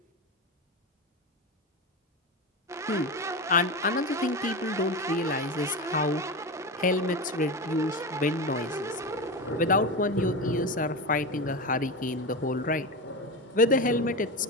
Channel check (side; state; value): both; normal; correlation 0.20